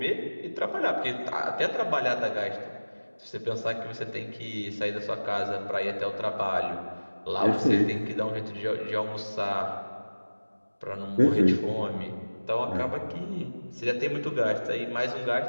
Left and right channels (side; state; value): both; inverted; correlation -1.00